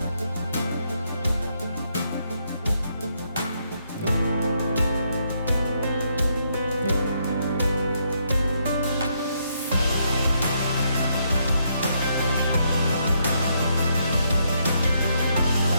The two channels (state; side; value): inverted; both; correlation -0.75